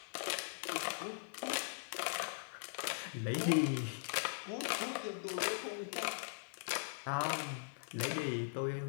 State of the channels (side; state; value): right; silent; digital silence